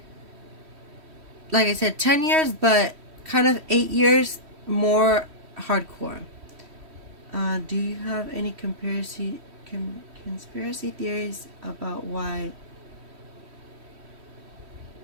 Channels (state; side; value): late; left; 3.1 ms